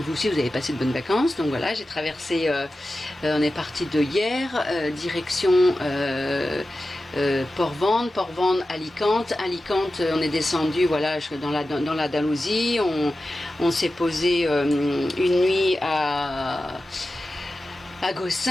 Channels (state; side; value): normal; both; correlation 0.93